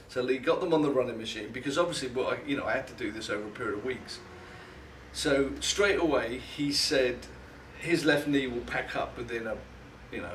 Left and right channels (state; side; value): identical; both; correlation 1.00